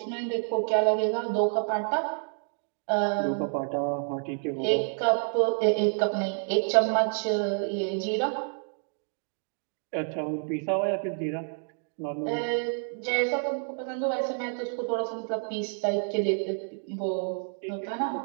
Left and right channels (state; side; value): silent; left; 59 dB below the other